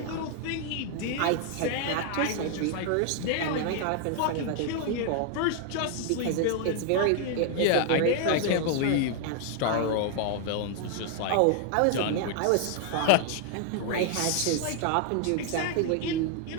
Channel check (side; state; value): both; different; correlation 0.00